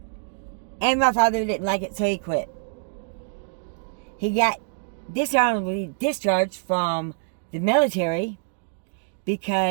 And my father didn't like it, so he quit. He got dishonorably discharged from the military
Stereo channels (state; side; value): silent; left; digital silence